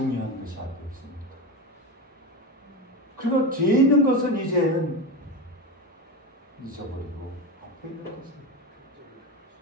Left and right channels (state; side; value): normal; both; correlation 0.20